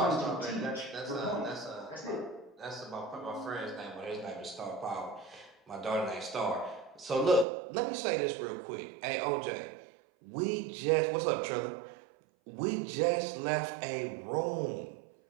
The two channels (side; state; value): left; drops out; at 7.5 s